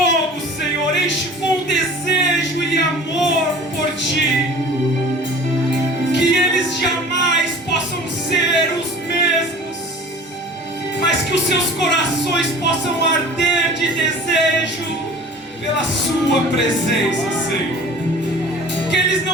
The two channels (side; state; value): both; normal; correlation 0.43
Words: Senhor. Enche com desejo e amor por Ti. Que eles jamais possam ser os mesmos, mas que os seus corações possam arder de desejo pela Sua presença, Senhor. Que eles